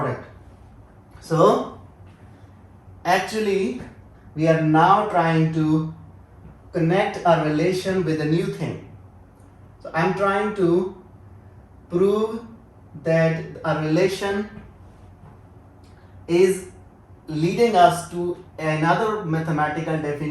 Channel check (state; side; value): identical; both; correlation 1.00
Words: So actually we are now trying to connect a relation with a new thing. So I'm trying to prove that a relation is leading us to another mathematical